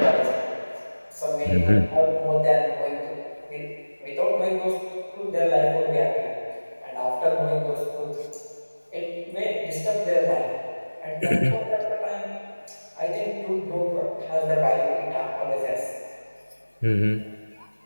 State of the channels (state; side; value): inverted; both; correlation -1.00